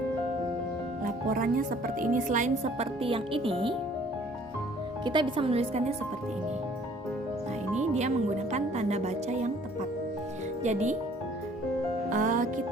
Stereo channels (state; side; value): normal; both; correlation 0.56